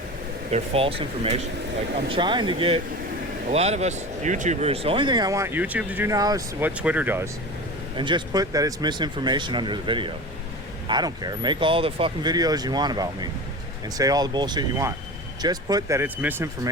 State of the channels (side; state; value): both; normal; correlation 0.31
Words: false information. Like, I'm trying to get a lot of us YouTubers, the only thing I want YouTube to do now is what Twitter does, and just put that it's misinformation under the video. I don't care. Make all the fucking videos you want about me and say all the bullshit you want. Just put that it's